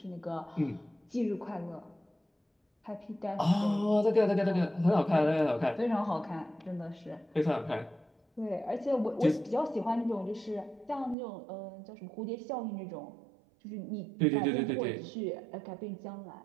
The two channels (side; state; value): left; drops out; at 11.2 s